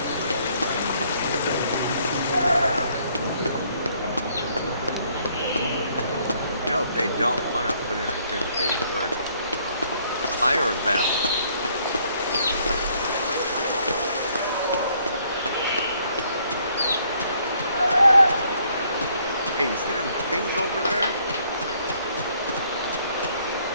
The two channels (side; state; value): both; inverted; correlation -0.66